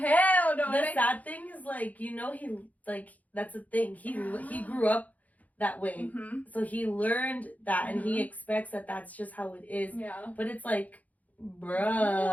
no. The sad thing is, like, you know, he, like, that's the thing. He grew up that way. Mm-hmm. So he learned that, and he expects that that's just how it is. Yeah. But it's like, bruh.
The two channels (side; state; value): right; late; 0.076 ms